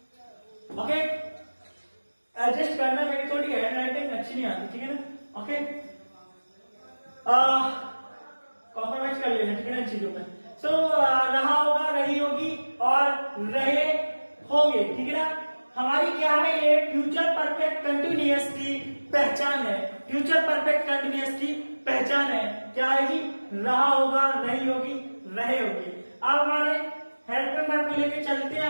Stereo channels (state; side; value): inverted; both; correlation -1.00